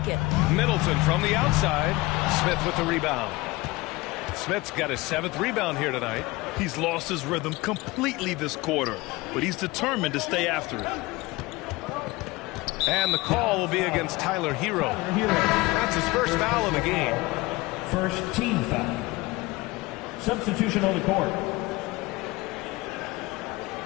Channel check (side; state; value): right; quieter; 21.4 dB